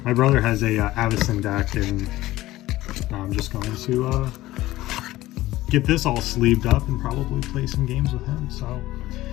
my brother has a Avacyn deck, and I'm just going to get this all sleeved up and probably play some games with him. So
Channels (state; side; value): quieter; right; 16.6 dB